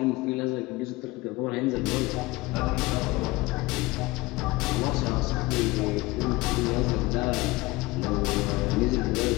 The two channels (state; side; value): quieter; right; 21.4 dB